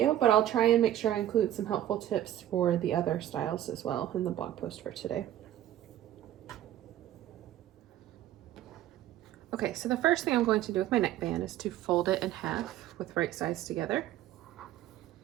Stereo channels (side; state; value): left; quieter; 12.6 dB